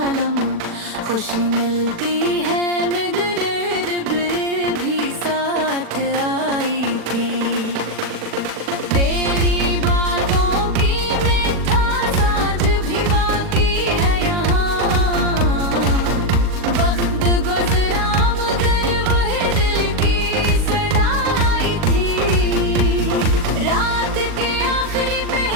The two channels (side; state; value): left; late; 40 ms